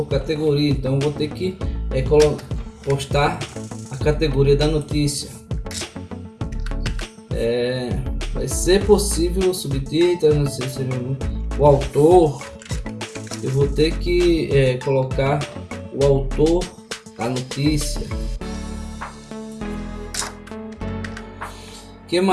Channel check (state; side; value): identical; both; correlation 1.00